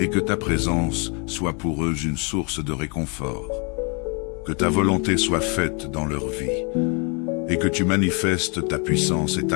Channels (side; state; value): right; quieter; 34.4 dB